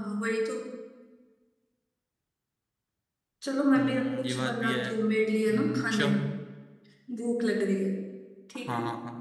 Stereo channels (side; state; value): both; identical; correlation 1.00